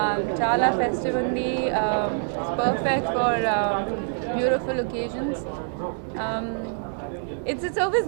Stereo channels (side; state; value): left; silent; digital silence